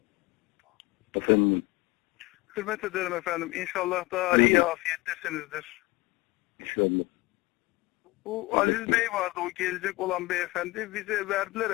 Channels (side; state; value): right; quieter; 21.8 dB